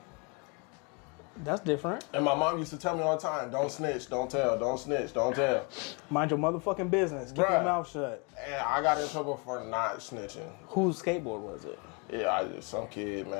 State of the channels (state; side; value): quieter; right; 33.0 dB